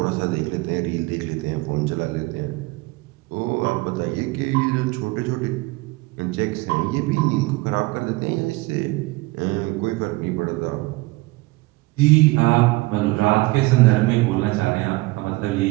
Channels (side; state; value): left; quieter; 22.3 dB